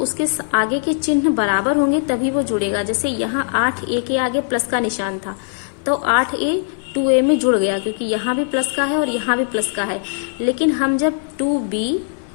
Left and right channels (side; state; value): right; silent; digital silence